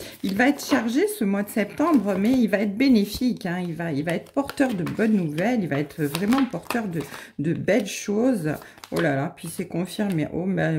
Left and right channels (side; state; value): both; identical; correlation 1.00